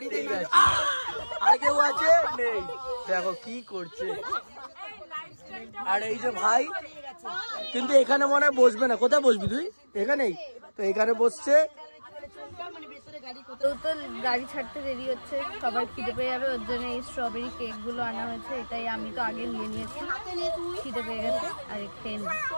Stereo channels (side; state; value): both; inverted; correlation -1.00